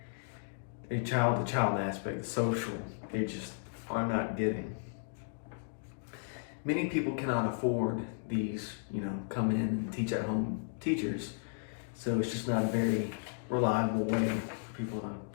child-to-child aspect, the social, they just are not getting. Many people cannot afford these, come in and teach at home teachers, so it's just not a very reliable way for people to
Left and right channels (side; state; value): right; silent; digital silence